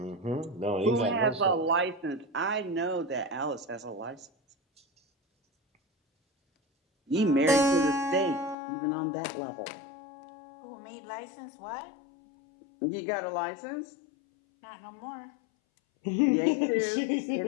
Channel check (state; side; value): drops out; right; at 8.6 s